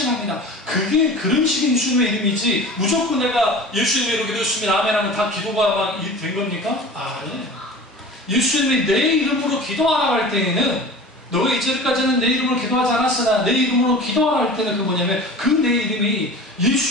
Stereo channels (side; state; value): both; normal; correlation 0.38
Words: 그게 그런 식의 예수님의 이름이지 무조건 내가 예수님의 이름으로 기도했습니다. 아멘 하면 다 기도가 막 된 겁니까? 아니에요. 예수님이 내 이름으로 기도하라고 할 때에는 너가 이제까지는 내 이름으로 기도하지 않았으나 내 이름으로 기도하라 할 때는 그 뭐냐면 그 내 이름이